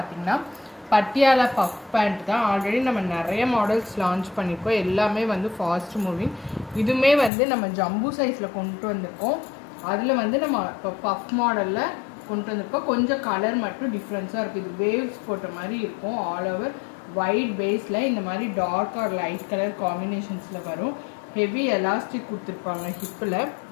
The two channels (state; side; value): drops out; right; at 7.3 s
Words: பட்டியாலா பஃப் பேண்ட் தான். ஆல்ரெடி நம்ம நிறைய மாடல்ஸ் லான்ச் பண்ணியிருக்கோம். எல்லாமே வந்து ஃபாஸ்ட் மூவிங். இதுவுமே வந்து நம்ம ஜம்பு சைஸில் கொண்டு வந்திருக்கோம். அதில் வந்து நம்ம இப்போ பஃப் மாடலில் கொண்டு வந்திருக்கோம். கொஞ்சம் கலர் மட்டும் டிஃப்ரென்ஸாக இருக்குது. இது வேவ்ஸ் போட்ட மாதிரி இருக்கும். ஆல் ஓவர் ஒயிட் பேஸில் இந்த மாதிரி டார்க் ஆர் லைட் கலர் காம்பினேஷன்ஸில் வரும். ஹெவி எலாஸ்டிக் கொடுத்துருப்பாங்க. ஹிப்பில்